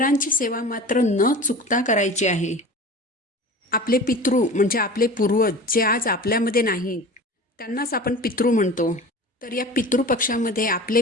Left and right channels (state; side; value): normal; both; correlation 0.37